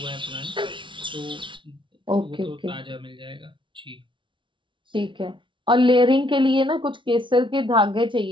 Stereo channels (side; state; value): left; late; 0.24 ms